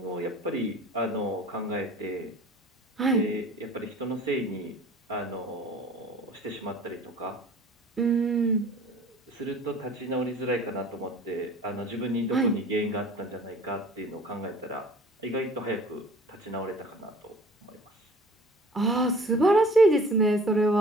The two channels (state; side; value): normal; both; correlation 0.47